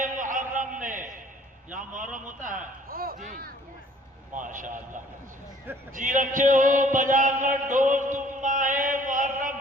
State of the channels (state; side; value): normal; both; correlation 0.56